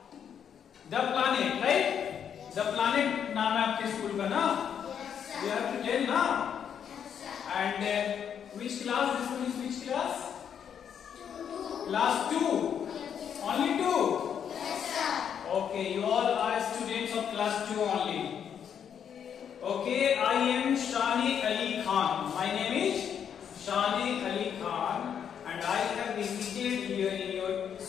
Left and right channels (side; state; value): right; quieter; 8.2 dB